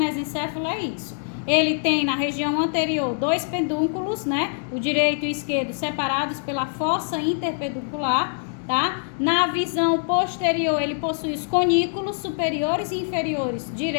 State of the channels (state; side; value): silent; right; digital silence